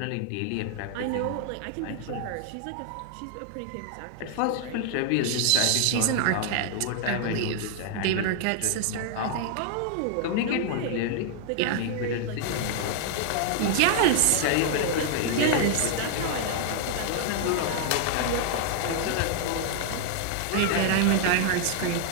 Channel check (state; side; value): different; both; correlation 0.00